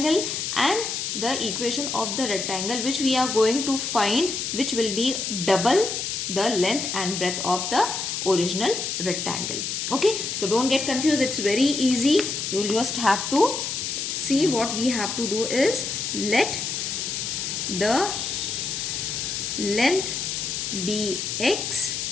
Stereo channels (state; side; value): noise; left; hiss, 3 dB below the sound